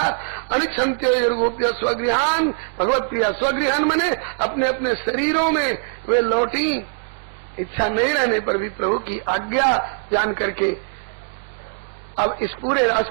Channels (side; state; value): left; silent; digital silence